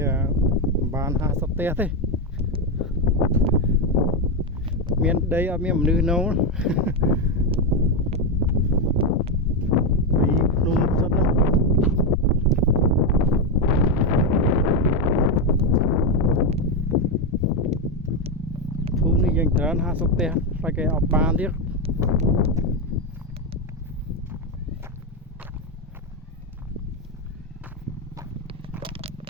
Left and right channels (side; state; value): both; normal; correlation 0.08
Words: បាន50ផ្ទះទេមានដីអត់មានមនុស្សនៅពីភ្នំសិនហ្នឹងភូមិនេះយ៉ាងច្រើន50ផ្ទះតែគេអត់បានទៀត